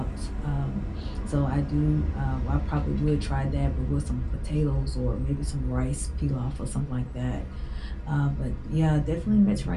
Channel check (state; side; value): identical; both; correlation 1.00